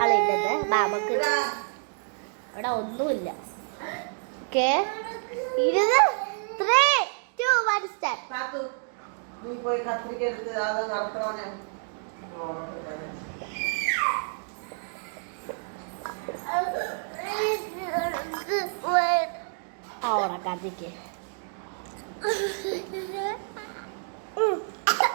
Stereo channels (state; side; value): silent; left; 59 dB below the other